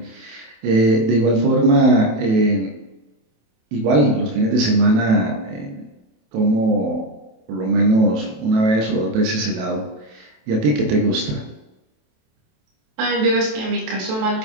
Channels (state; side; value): late; left; 27 ms